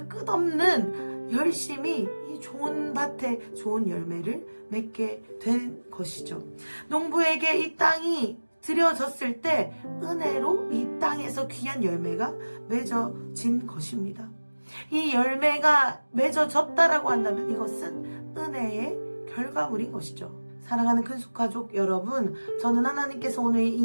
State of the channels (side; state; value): both; inverted; correlation -1.00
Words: 끝없는 열심이 이 좋은 밭에 좋은 열매를 맺게 된 것이죠. 농부에게 이 땅이 들여졌을 때 은혜로 이 땅에서 귀한 열매가 맺어진 것입니다. 이 열매가 맺어졌다라고 한다면 이것은 은혜의 결과물인 것이죠. 사랑하는 큰숙가족 여러분, 저는 하나님께서 오늘